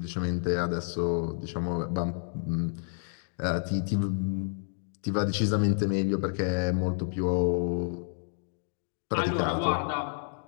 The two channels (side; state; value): right; silent; digital silence